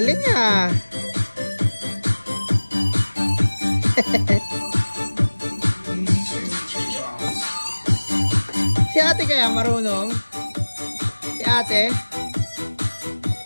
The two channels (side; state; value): both; inverted; correlation -1.00